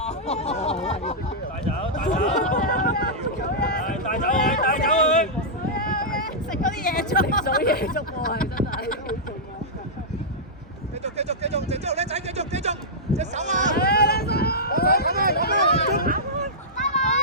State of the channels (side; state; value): both; normal; correlation -0.12